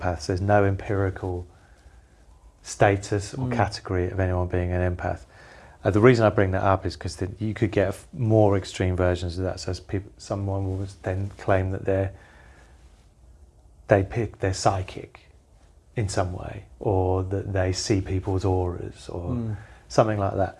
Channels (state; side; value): identical; both; correlation 1.00